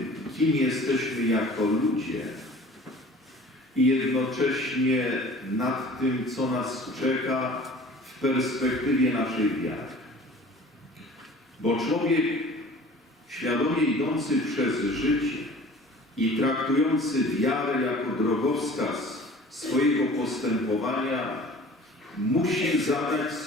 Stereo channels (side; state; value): both; normal; correlation 0.45